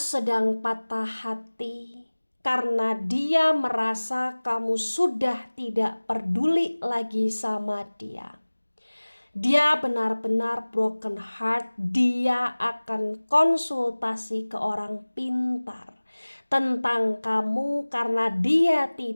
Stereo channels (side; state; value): both; inverted; correlation -1.00